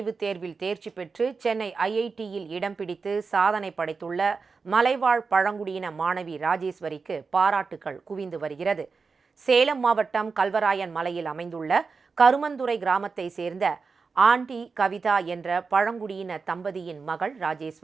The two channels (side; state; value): left; quieter; 4.8 dB